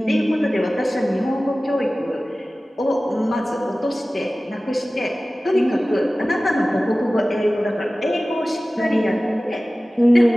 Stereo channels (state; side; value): normal; both; correlation 0.97